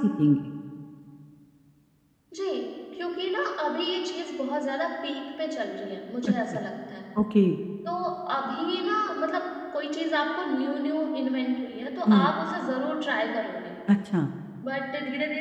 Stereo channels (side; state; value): both; identical; correlation 1.00